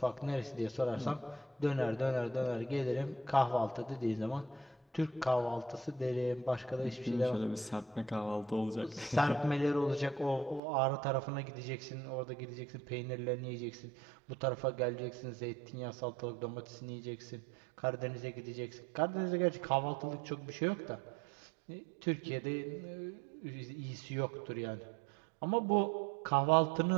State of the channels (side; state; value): left; drops out; at 10.6 s